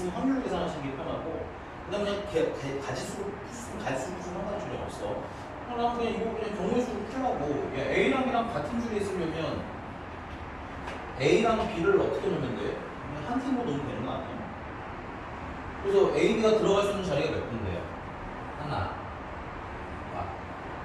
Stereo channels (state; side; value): identical; both; correlation 1.00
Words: 확률로 계산하시는 게 편하고, 그다음에 그냥 가지수로 상관이 전혀 없어. 그냥 이거 그냥 경우의 수로 풀라고. A랑 B랑 같은 줄에 있으려면 A랑 B를 어떻게 놓으면 돼? 그냥 한 팀으로 놓으면 되는 거 아니에요? 그래서 A, B가 들어갈 수 있는 자리가 몇 군데요? 하나,